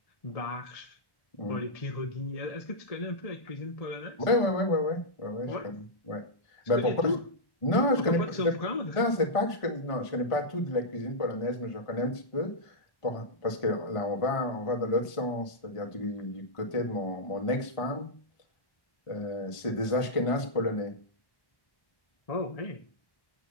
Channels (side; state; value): right; late; 1.5 ms